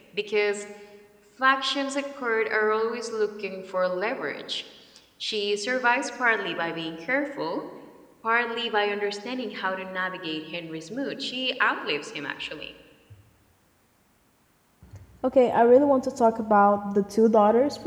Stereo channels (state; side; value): identical; both; correlation 1.00